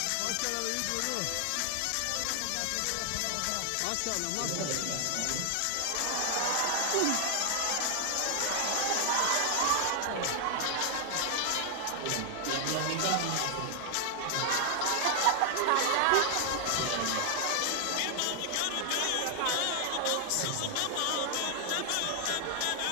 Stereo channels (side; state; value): both; different; correlation 0.00